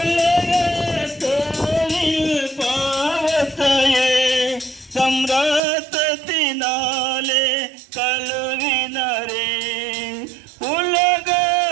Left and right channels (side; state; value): left; drops out; at 5.6 s